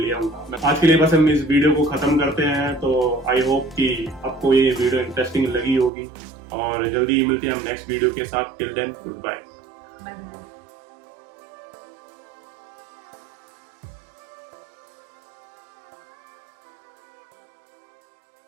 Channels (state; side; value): drops out; left; at 5.9 s